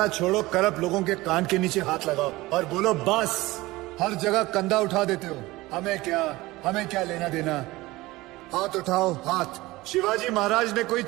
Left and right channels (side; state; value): left; quieter; 19.7 dB